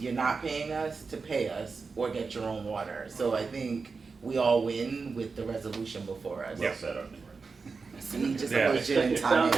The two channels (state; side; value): quieter; left; 4.6 dB